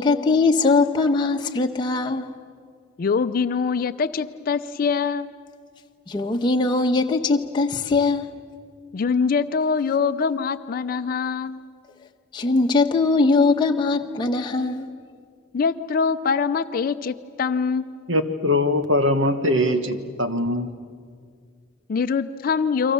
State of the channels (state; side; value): quieter; right; 3.4 dB